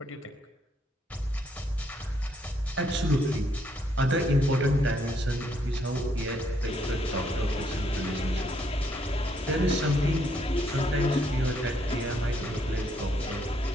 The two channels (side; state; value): both; normal; correlation 0.72